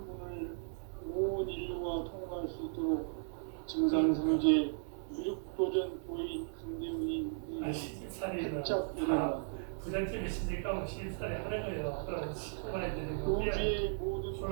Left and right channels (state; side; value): silent; left; digital silence